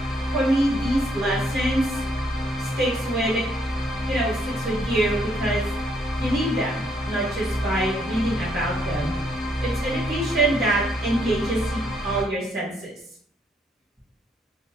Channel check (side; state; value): both; normal; correlation 0.71